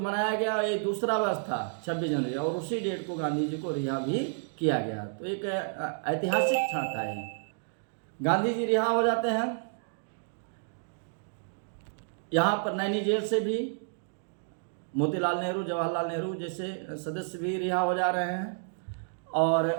मनाया गया, ये दूसरा वर्ष था 26 जनवरी, और उसी डेट को गांधी जी को रिहा भी किया गया। तो एक ऐतिहासिक क्षण था ये। गांधी जी रिहा हो जाते हैं, यहाँ पर नैनी जेल से भी मोतीलाल नेहरू, जवाहरलाल नेहरू जैसे सदस्य भी रिहा हो जा रहे हैं। और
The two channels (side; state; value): left; silent; digital silence